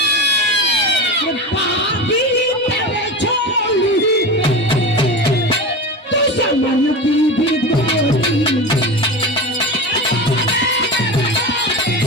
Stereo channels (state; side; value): normal; both; correlation 0.25